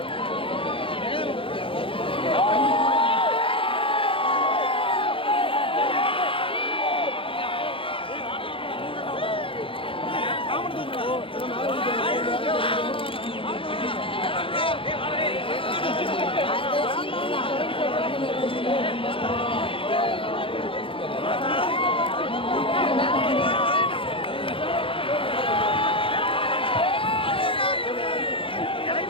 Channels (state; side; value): late; right; 0.26 ms